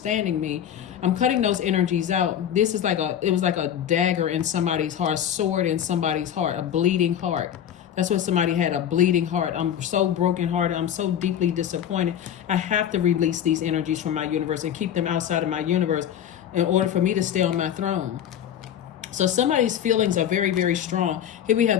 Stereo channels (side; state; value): right; quieter; 9.8 dB